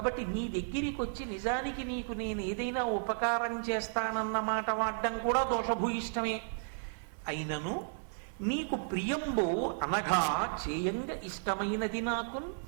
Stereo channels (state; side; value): silent; left; digital silence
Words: నీ దగ్గరికి వచ్చి నిజానికి నీకు నేను ఏదైనా ఉపకారం చేస్తానన్న మాట వాడడం కూడా దోషభూయిష్టమే. అయినను నీకు ప్రియంబు అనగా చేయంగ ఇష్టమైనది నాకు.